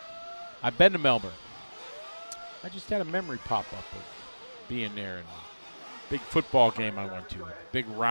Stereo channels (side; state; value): both; inverted; correlation -1.00